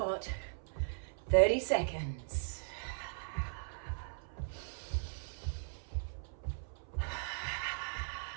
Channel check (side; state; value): left; silent; 52 dB below the other